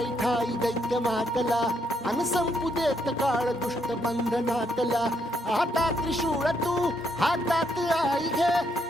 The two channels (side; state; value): both; normal; correlation 0.75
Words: ठाई दैत्य मातला अन संपू देत काळ दुष्ट बंधनातला. आता त्रिशूळ तू हातात आई घे